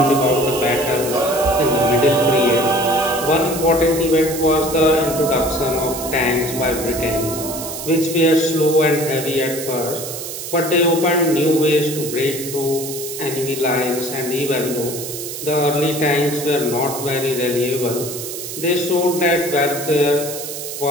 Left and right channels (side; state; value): right; noise; hiss, 8 dB below the sound